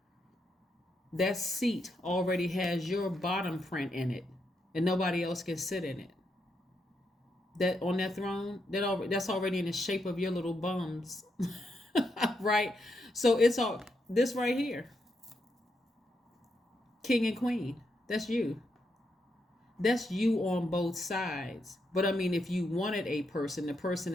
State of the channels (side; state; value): both; normal; correlation 0.81